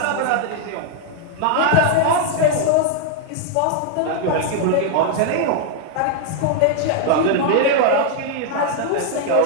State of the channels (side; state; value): both; different; correlation 0.00